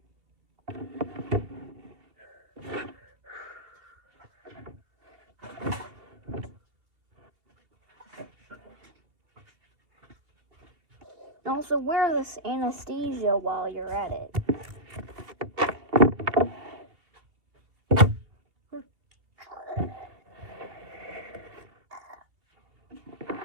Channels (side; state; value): left; late; 2.7 ms